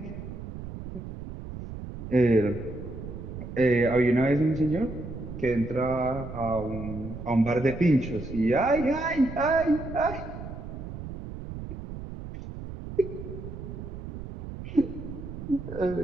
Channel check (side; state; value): right; noise; rumble, 10 dB below the sound